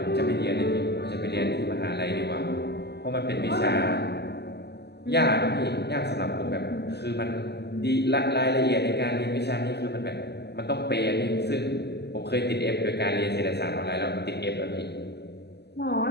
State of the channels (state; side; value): late; right; 0.49 ms